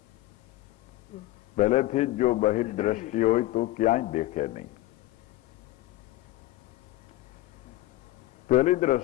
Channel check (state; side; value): quieter; right; 16.6 dB